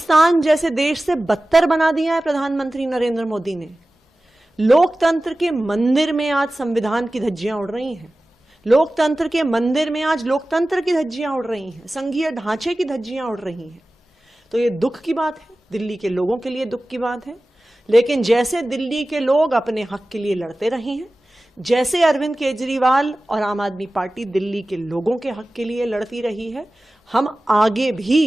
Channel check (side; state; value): both; normal; correlation 0.96